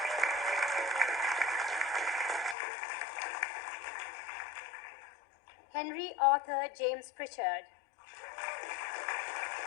Henry Arthur James Pritchard.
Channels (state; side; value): drops out; right; at 2.6 s